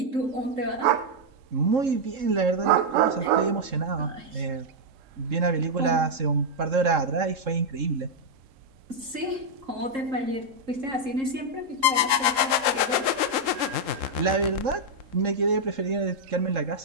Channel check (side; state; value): left; late; 3.7 ms